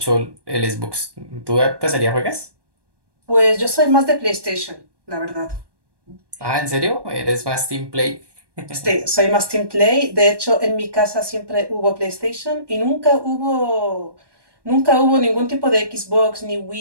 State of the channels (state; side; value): late; left; 1.2 ms